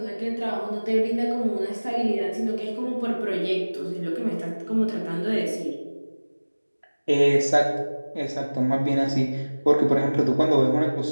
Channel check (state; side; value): inverted; both; correlation -1.00